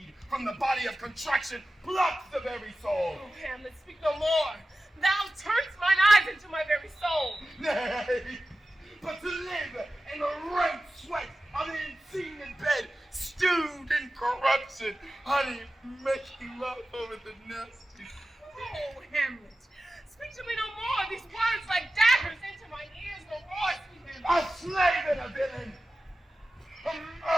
from the body of contraction plucks the very soul. Oh, Hamlet, speak no more. Thou turnest mine eyes into my very soul. Nay, but to live in the rank sweat of the unseen in bed, stewed in corruption, honey, making love over the nest. Oh, Hamlet, speak to me no more. These words like daggers into my ears no more, sweet Hamlet. A slave and a villain, a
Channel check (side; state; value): both; normal; correlation 0.95